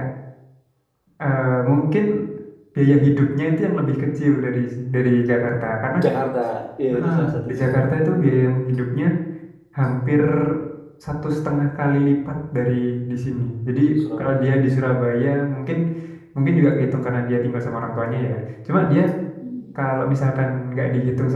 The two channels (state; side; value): identical; both; correlation 1.00